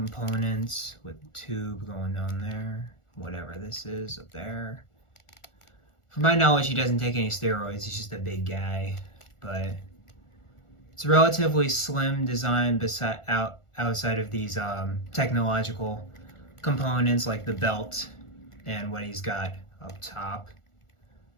with the tube going down there, whatever this is up there. From my knowledge, he doesn't take any steroids. He's just a big guy, but it's a relatively slim design outside of these technological components like the belt and what he's got up top.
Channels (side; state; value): right; late; 1.4 ms